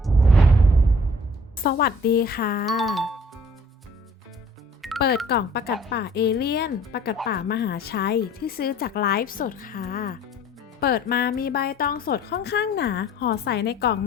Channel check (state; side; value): normal; both; correlation 0.53